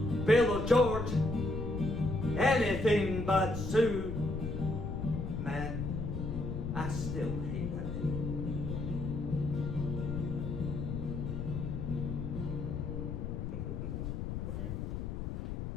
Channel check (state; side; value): noise; left; rumble, 4 dB below the sound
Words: Bill or George, anything but Sue. Man, I still hate that name.